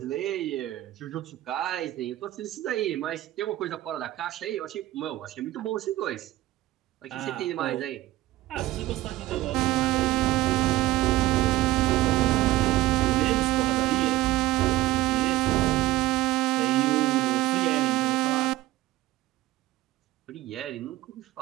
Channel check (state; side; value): quieter; left; 16.5 dB